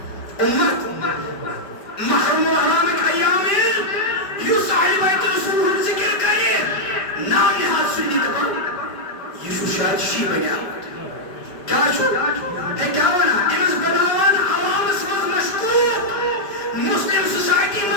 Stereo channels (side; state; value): right; late; 5.2 ms